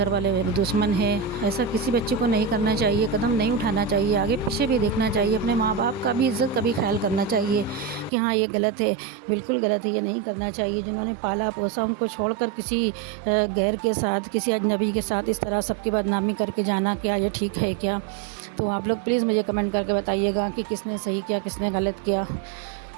والے میرے دشمن ہیں۔ ایسا کسی بچے کو نہیں کرنا چاہیے، قدم نہیں اٹھانا چاہیے، آگے پیچھے بھی دیکھنا چاہیے، اپنے ماں باپ کا بھی عزت کا بھی خیال کرنا چاہیے کہ ہاں یہ غلط ہے، بالکل غلط ہے، یہ نہیں کرنا چاہیے۔ جنہوں نے پالا پوسا ان کو چھوڑ کر کسی غیر کے ساتھ، کسی اجنبی کے ساتھ اس طرح سب کی بدنامی کر کے جانا، کیا یہ ٹھیک ہے کیا؟ تو آپ لوگ پلیز مجھے کمنٹ کر کے بتائیے گا کہ کس نے صحیح کیا کس نے غلط کیا۔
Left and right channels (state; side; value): drops out; left; at 8.1 s